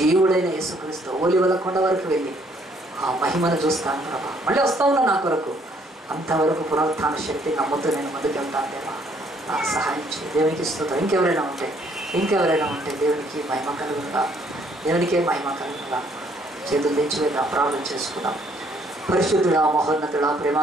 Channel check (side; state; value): both; normal; correlation 0.65